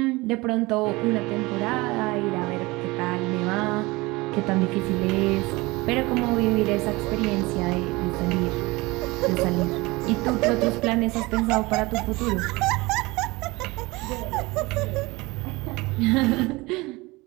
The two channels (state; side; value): quieter; left; 22.6 dB